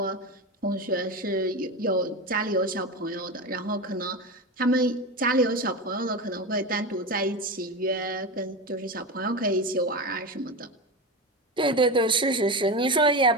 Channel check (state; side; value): normal; both; correlation 0.21